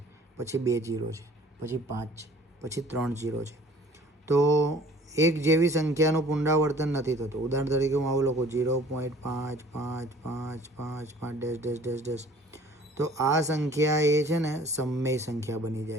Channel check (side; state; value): both; normal; correlation 0.51